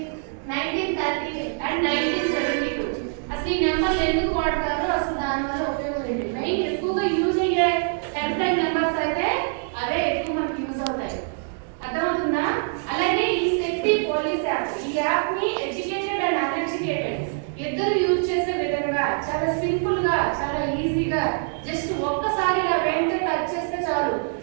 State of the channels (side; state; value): left; silent; 62 dB below the other